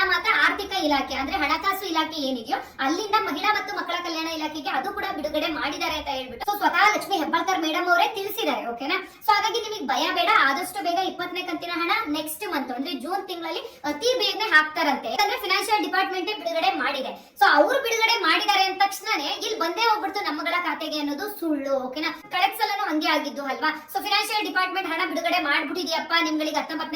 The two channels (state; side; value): identical; both; correlation 1.00